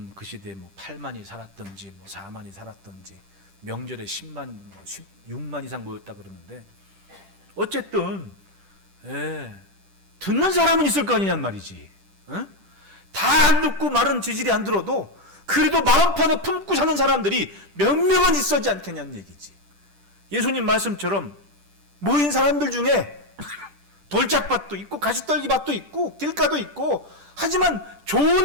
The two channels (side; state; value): left; late; 10 ms